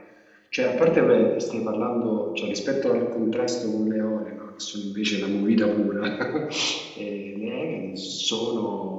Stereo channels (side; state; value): both; identical; correlation 1.00